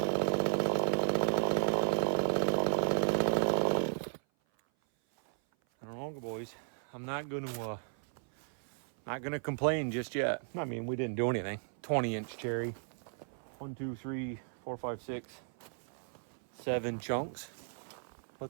Boys, I'm not gonna complain just yet. I mean, we didn't do anything. 20-inch cherry. 1, 2, 3, 4, 5, 6, 7 chunks.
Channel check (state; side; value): silent; left; 54 dB below the other